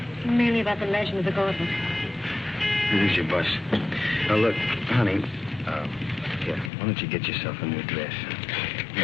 Mainly about the legend of the gauntlet. Here's your bus. Now, look, honey, here, why don't you get yourself a new dress?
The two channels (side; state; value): right; drops out; at 6.7 s